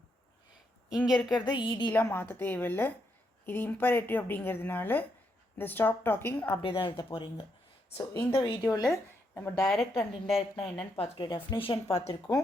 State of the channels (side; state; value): both; normal; correlation 0.79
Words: இங்கே இருக்கிறத ஈடிலாம் மாற்ற தேவையில்லை. இது இம்பரேட்டிவ் அப்படிங்கிறதுனால இந்த ஸ்டாப் டாக்கிங் அப்படியே தான் எழுத போகிறீங்க. ஸோ இந்த வீடியோவில் நம்ம டைரக்ட் அண்ட் இன்டைரக்ட்னா என்னென்னு பார்த்துட்டு டெஃபினிஷன் பார்த்துருக்கோம்.